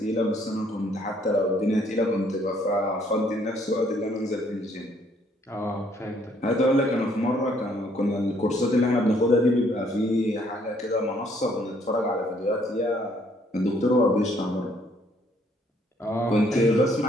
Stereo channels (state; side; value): normal; both; correlation 0.66